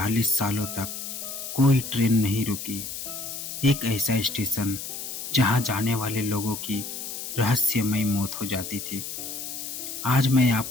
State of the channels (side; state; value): left; noise; hiss, 7 dB below the sound